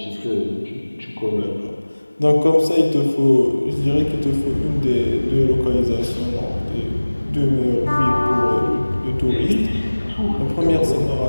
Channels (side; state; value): both; inverted; correlation -1.00